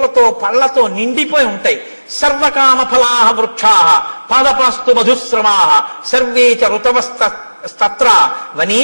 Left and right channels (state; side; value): inverted; both; correlation -1.00